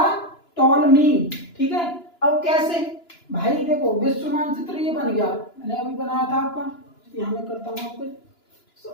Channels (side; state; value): right; late; 2.9 ms